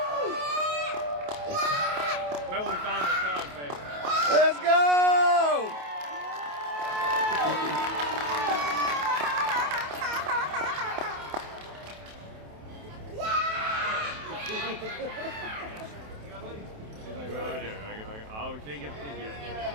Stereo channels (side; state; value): left; late; 28 ms